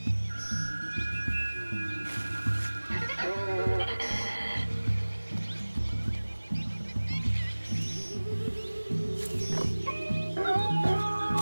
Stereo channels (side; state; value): both; inverted; correlation -1.00